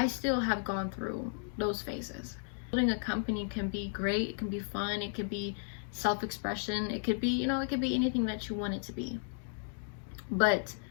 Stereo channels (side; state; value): right; silent; digital silence